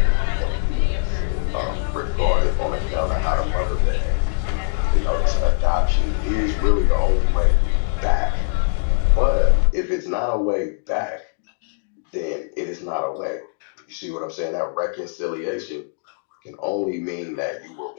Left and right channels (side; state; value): right; silent; digital silence